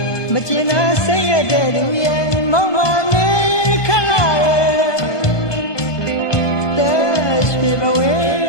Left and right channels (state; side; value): late; right; 1.5 ms